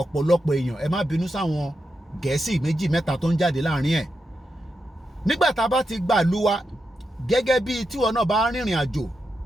ọ̀pọ̀lọpọ̀ èèyàn ẹ má bínú sáwọn Gẹ̀ẹ́sì méjì mẹ́ta tó ń jáde láàrin ẹ̀. Nígbà tá a bá ti gbà lú wa gẹ́gẹ́ bí tíwọ náà bá rìnrìn àjò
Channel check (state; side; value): normal; both; correlation 0.86